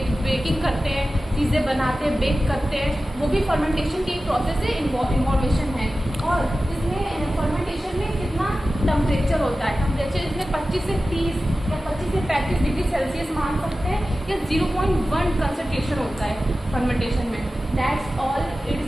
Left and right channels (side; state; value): both; normal; correlation 0.95